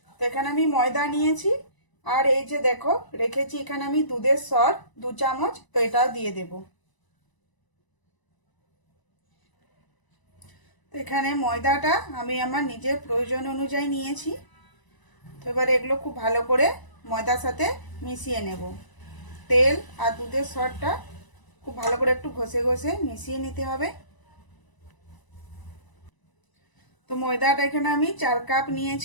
তো এখানে আমি ময়দা নিয়েছি, আর এই যে দেখো রেখেছি এখানে আমি দুধের সর 2 চামচ। তো এটাও দিয়ে দেবো। তো এখানে ময়দাটা আমি আমার নিজের প্রয়োজন অনুযায়ী নিয়েছি। তো এবার এগুলো খুব ভালো করে ময়দার সাথে মিশিয়ে নেব। তেল আর দুধের সরটা খুব ভালো করে একটু ঘষে ঘষে মিশিয়ে নিতে হবে। তো ময়দাটা এখানে আমি 4 কাপ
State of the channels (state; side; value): late; right; 1.0 ms